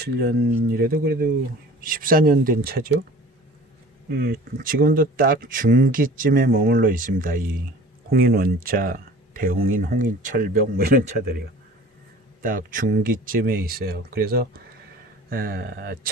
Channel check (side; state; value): both; normal; correlation 0.44